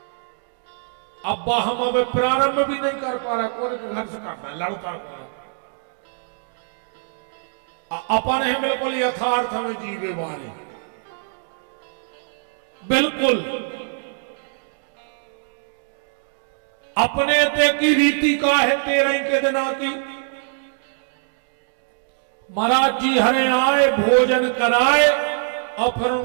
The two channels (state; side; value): silent; left; digital silence